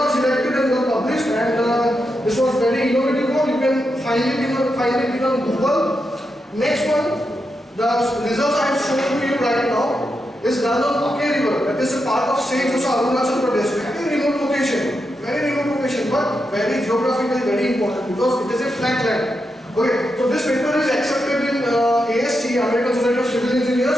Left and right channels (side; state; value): both; normal; correlation 0.86